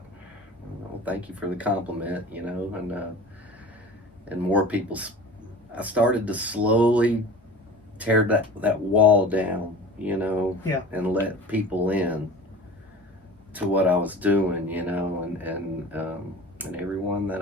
Well, thank you for the compliment. You know, and more people. I started to slowly tear that wall down, you know, and let people in to what I was doing, you know, and everyone that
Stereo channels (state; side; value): normal; both; correlation 0.38